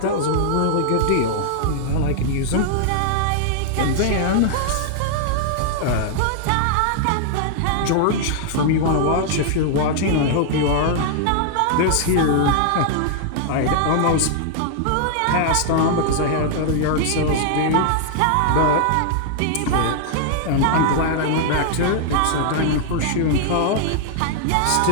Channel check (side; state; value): both; different; correlation -0.01